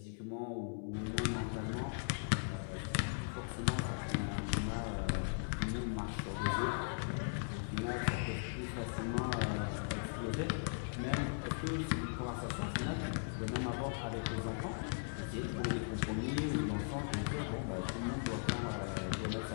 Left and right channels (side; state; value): right; silent; digital silence